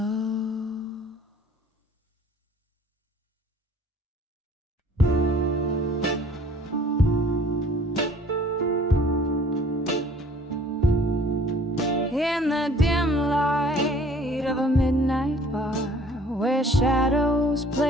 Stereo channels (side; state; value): both; normal; correlation 0.53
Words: In the dim light of a midnight bar, where shadows